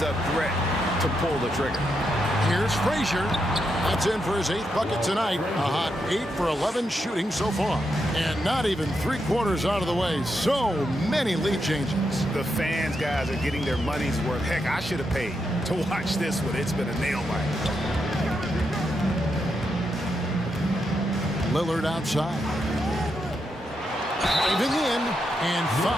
threat to pull the trigger. Here's Frazier. That's in for his 8th bucket tonight. A hot 8 for 11 shooting so far. And not even 3/4 out of the way. So many lead changes. The fans, guys, are getting their money's worth. Heck, I should have paid to watch this one. It's been a nail biter. Lillard outside. Driving in and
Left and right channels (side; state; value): both; normal; correlation 0.83